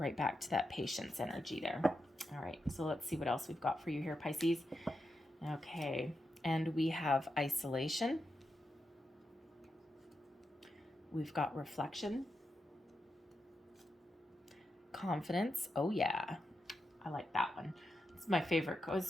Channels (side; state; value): both; normal; correlation 0.87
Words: back to that patience energy there. All right, so let's see what else we've got for you here, Pisces. Okay, and we have isolation. We've got reflection. Confidence. Oh yeah, I like that one. It's my favorite.